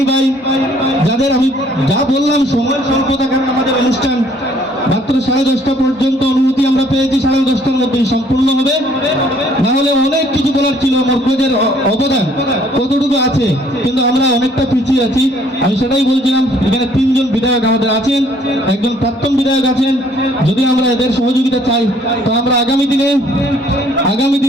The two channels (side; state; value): both; normal; correlation 0.61